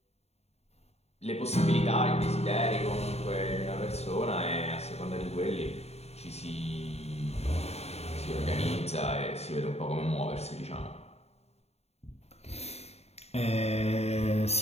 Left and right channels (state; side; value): late; right; 0.31 ms